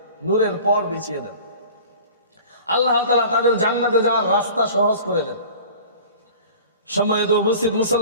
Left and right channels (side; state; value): both; inverted; correlation -0.42